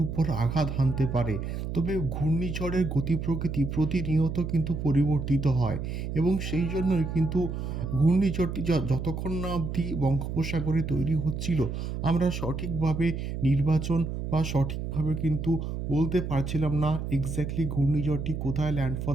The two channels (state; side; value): noise; right; hum, 4 dB below the sound